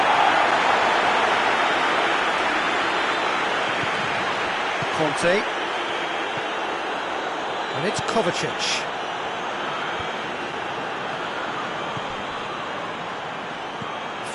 Conte. And it's Kovacic.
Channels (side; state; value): both; identical; correlation 1.00